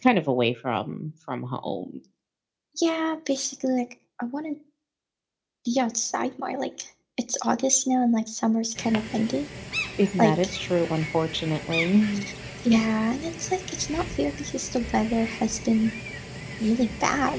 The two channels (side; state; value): both; identical; correlation 1.00